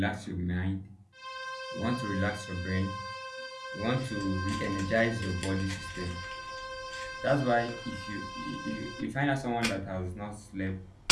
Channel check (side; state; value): both; identical; correlation 1.00